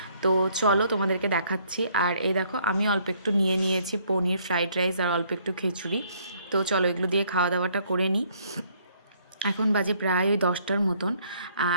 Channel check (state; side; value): inverted; both; correlation -0.65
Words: তো চলো তোমাদেরকে দেখাচ্ছি। আর এই দেখো আমি অল্প একটু নিয়ে নিয়েছি পনির, ফ্রাইড রাইস আর অল্প একটু খিচুড়ি। তো চলো এগুলো দিয়ে খাওয়া দাওয়াটা করে নিই। এখন বাজে প্রায় ওই 10টার মতন।